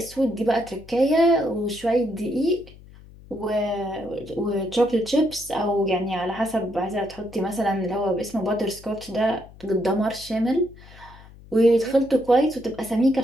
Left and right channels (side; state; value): left; noise; hum, 21 dB below the sound